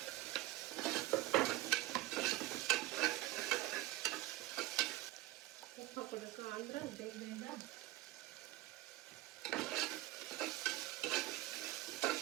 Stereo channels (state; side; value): quieter; left; 17.1 dB